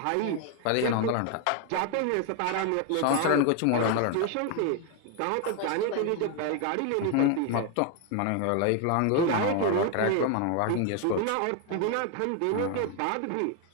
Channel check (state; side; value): different; both; correlation 0.01